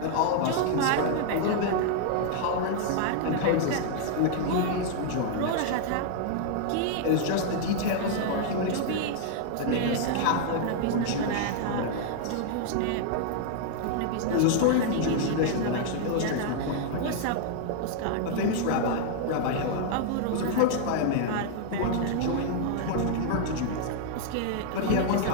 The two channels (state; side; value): different; both; correlation 0.00